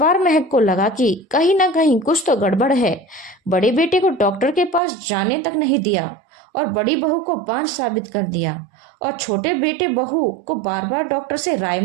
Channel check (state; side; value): drops out; left; at 4.8 s